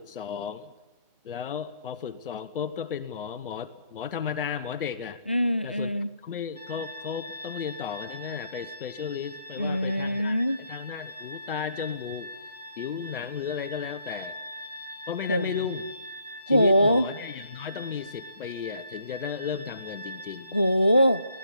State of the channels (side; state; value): both; inverted; correlation -0.67